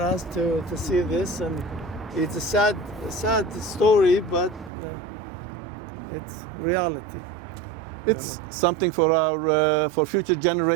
to see this, and it's a sad story, but it's reality. It's something for our for future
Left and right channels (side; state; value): left; drops out; at 4.7 s